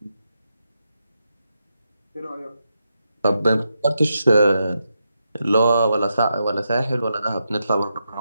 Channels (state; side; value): inverted; both; correlation -0.85